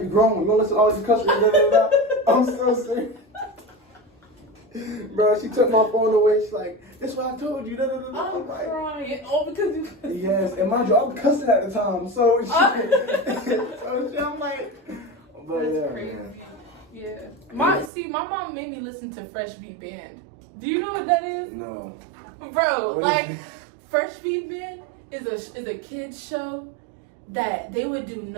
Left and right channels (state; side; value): drops out; left; at 17.9 s